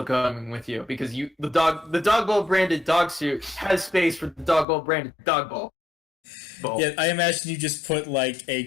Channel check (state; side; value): drops out; right; at 4.7 s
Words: coming with you because the dog bowl branded dog suit has space for the dog bowl branded dog bowl. Yeah, I imagine you just put like a